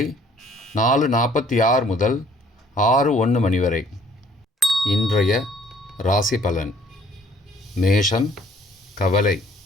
4:46 முதல் 6:01 மணி வரை. இன்றைய ராசி பலன். மேஷம் கவலை,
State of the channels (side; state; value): both; normal; correlation 0.59